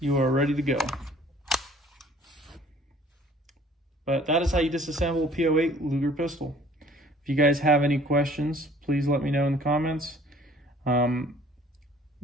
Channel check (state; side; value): normal; both; correlation 0.54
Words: are ready to go. But that is how you disassemble a P08 Luger pistol. If you guys have any questions, please let me know in the comments.